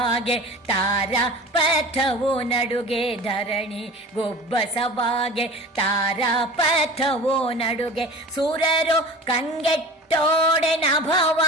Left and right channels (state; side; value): normal; both; correlation 0.37